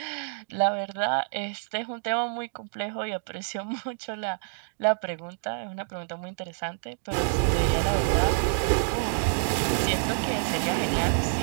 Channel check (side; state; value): left; silent; digital silence